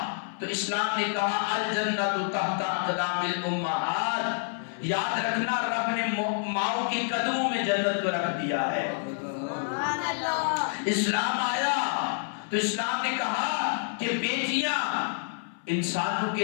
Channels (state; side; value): silent; right; 58 dB below the other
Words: تو اسلام نے کہا الجنت تحت اقدام الامہات، یاد رکھنا رب نے ماؤں کے قدموں میں جنت کو رکھ دیا ہے۔ اسلام آیا تو اسلام نے کہا کہ بیٹیاں انسانوں